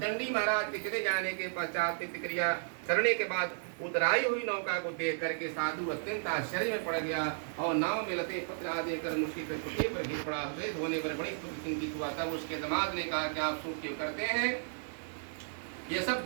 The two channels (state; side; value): silent; left; digital silence